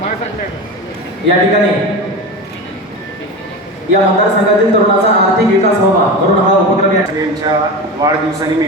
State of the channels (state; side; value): normal; both; correlation 0.26